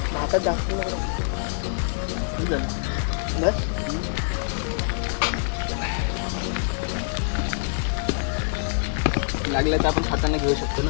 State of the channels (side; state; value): right; silent; digital silence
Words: भातात जास्त बस. लागलं तर आपण हाताने घेऊ शकतो ना.